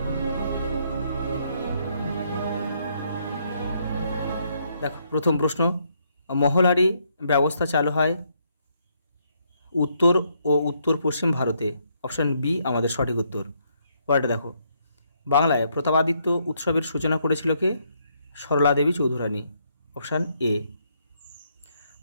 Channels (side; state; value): both; inverted; correlation -0.73